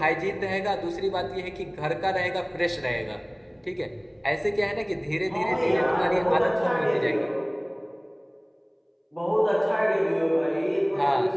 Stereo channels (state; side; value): identical; both; correlation 1.00